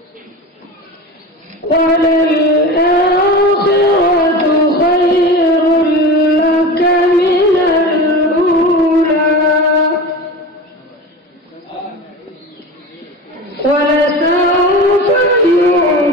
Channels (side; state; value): both; normal; correlation 0.30